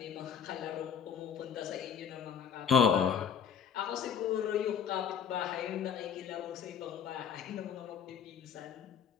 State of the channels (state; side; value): quieter; right; 7.7 dB